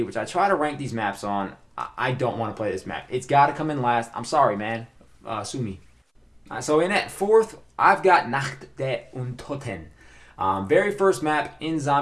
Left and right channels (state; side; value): identical; both; correlation 1.00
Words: which I try to rank these maps on, I don't want to play this map. It's got to come in last. I'm sorry, man. Sue me. So in at 4th, I've got Nacht der Untoten. Very first map in